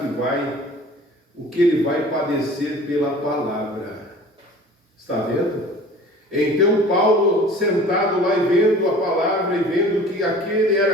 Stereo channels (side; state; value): both; normal; correlation 0.45